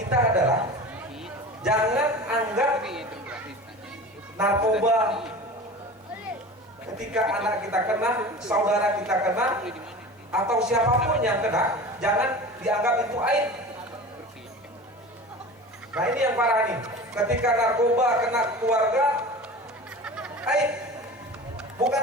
adalah jangan anggap narkoba ketika anak kita kena, saudara kita kena, atau siapapun yang kena, jangan dianggap itu aib. Nah ini yang parah nih, ketika narkoba kena keluarga, aib. Bukan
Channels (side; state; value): both; normal; correlation 0.35